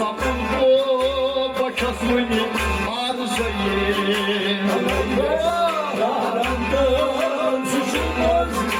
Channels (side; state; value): both; identical; correlation 1.00